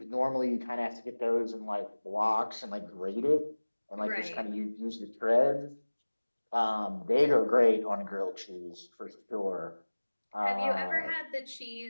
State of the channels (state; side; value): inverted; both; correlation -1.00